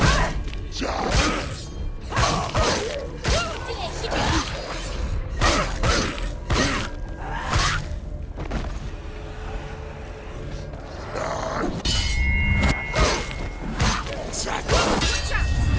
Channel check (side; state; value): both; identical; correlation 1.00